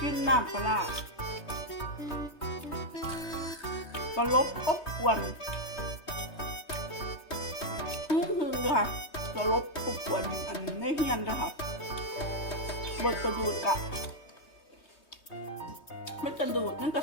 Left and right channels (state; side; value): late; right; 3.2 ms